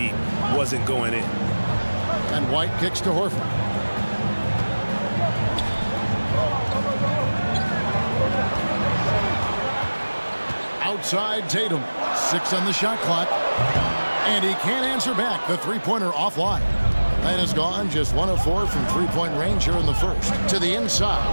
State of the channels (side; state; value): both; inverted; correlation -1.00